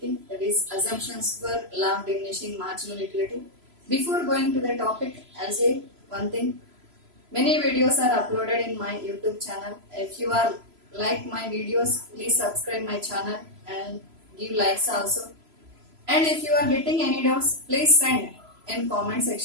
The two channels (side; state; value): left; late; 3.0 ms